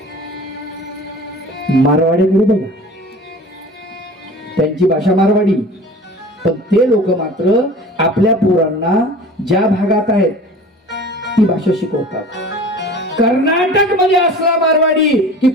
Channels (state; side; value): normal; both; correlation 0.41